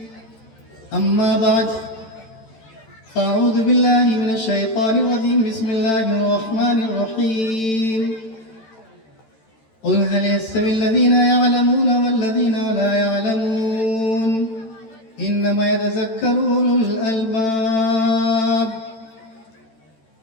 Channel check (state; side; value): late; right; 13 ms